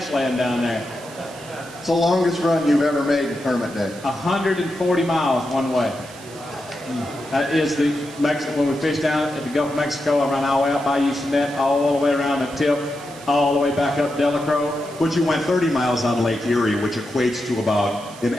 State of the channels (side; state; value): right; noise; hiss, 19 dB below the sound